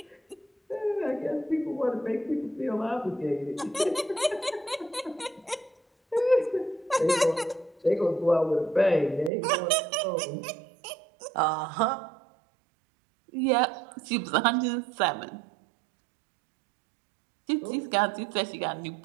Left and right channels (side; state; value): left; drops out; at 9.3 s